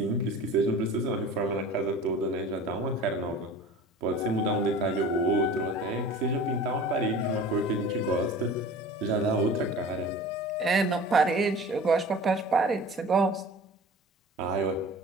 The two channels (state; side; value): normal; both; correlation 0.41